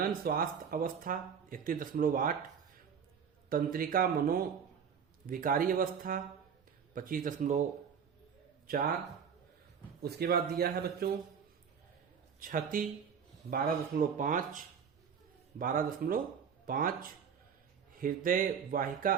स्वास्थ्य अवस्था 31.8, तंत्रिका मनोविकारी अवस्था 25.4, उसके बाद दिया है बच्चों क्षति 12.5, हृदय वाहिका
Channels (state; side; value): quieter; left; 7.1 dB